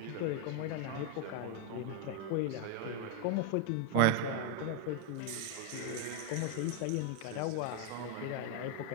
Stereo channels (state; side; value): different; both; correlation 0.01